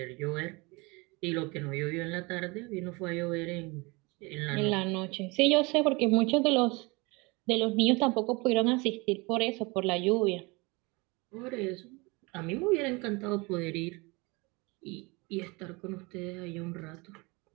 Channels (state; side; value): quieter; left; 26.4 dB